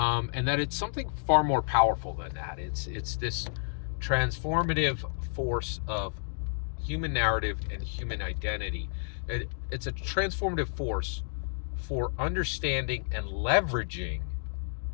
that it's something far more powerful than that. It's this transformative force of human narrative and human identity. It's a transformative force for understanding and leveraging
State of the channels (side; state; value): right; silent; digital silence